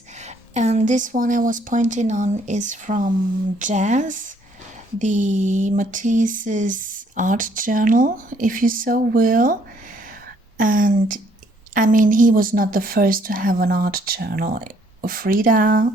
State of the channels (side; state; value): both; normal; correlation 0.65